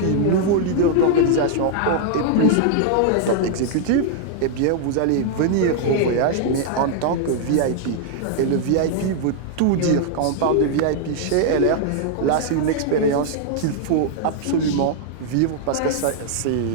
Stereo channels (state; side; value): different; both; correlation -0.01